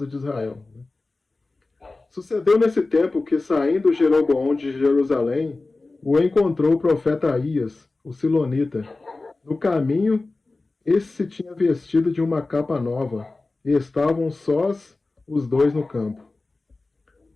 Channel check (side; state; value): right; quieter; 3.4 dB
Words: de Israel. Sucedeu nesse tempo que, saindo Jeroboão de Jerusalém, o encontrou o profeta Aías, o silonita. No caminho, esse se tinha vestido de uma capa nova, e estavam sós os dois no campo.